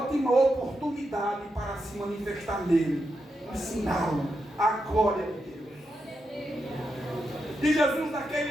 oportunidade para se manifestar nele, ensiná-lo a glória de Deus. E Jesus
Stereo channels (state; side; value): normal; both; correlation 0.85